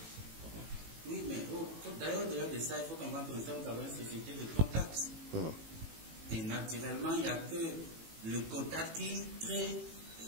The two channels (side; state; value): left; late; 18 ms